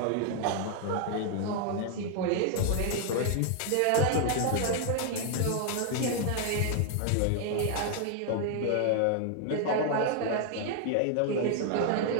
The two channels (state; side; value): different; both; correlation 0.00